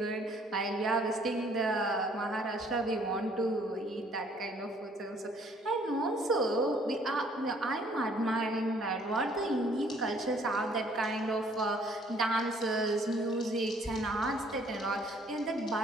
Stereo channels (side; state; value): both; normal; correlation 0.61